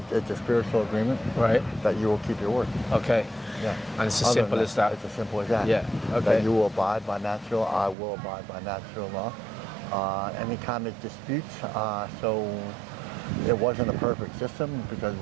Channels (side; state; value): left; drops out; at 8.0 s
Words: It's a spiritual agreement. Right. That you will keep your word. Okay. Yeah. And it's as simple as that. It's as simple as that. Yeah. Okay. That you will abide by natural. I will abide by natural law. Any kind of disputes. So it wasn't a perfect system because